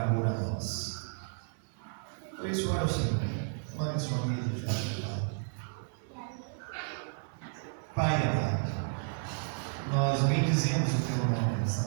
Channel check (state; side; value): silent; left; 56 dB below the other